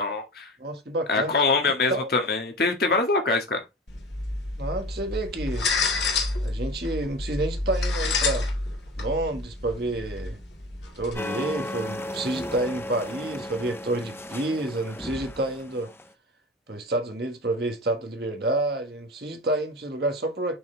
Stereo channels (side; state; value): both; normal; correlation 0.34